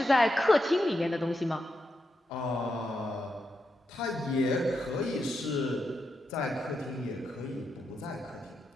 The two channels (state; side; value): normal; both; correlation 0.85